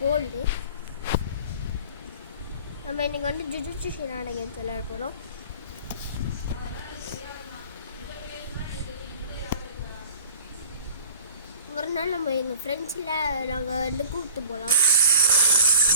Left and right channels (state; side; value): inverted; both; correlation -0.45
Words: கோல்டு. நம்ம இன்னைக்கு வந்து ஜுஜுட்சு ஷினான கேம்ஸ் விளையாட போகிறோம். ஒரு நாள் நம்ம எங்கள் ஃப்ரெண்ட்ஸில் நாங்கள் வந்து கூப்பிட்டு போகலாம்.